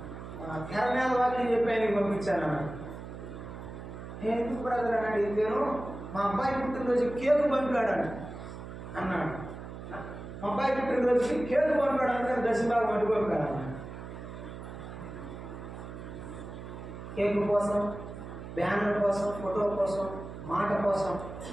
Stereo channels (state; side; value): noise; right; hum, 11 dB below the sound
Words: తెరమేద వాక్యం చెప్పాను పంపించాను. నేను ఎందుకు బ్రదర్ అని అడిగితేను, మా అబ్బాయి పుట్టినరోజు కేకు పంపాడు అన్నాడు. మా అబ్బాయి పుట్టినరోజుకి కేకు పంపాడు అంటే దశమ భాగం అడ్డు పంపాడు అన్నాడు. కేకు కోసం, బ్యానర్ కోసం, ఫోటో కోసం, మాట కోసం